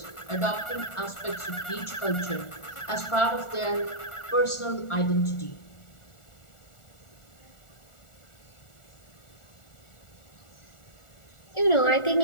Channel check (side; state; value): right; late; 1.4 ms